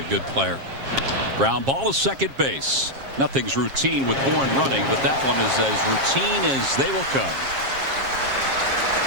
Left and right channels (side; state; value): left; late; 7.4 ms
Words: good player. Ground ball to second base. Nothing's routine with Bourne running, but that one is as routine as they will come.